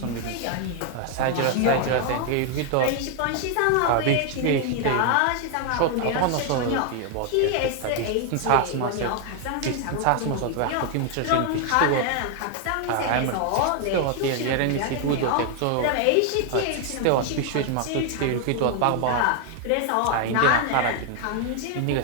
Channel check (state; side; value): different; both; correlation 0.00